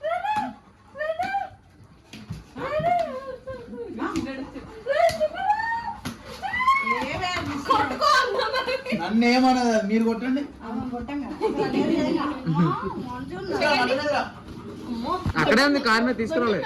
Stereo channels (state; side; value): identical; both; correlation 1.00